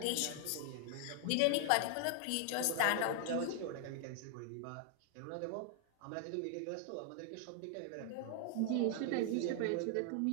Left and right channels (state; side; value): different; both; correlation 0.00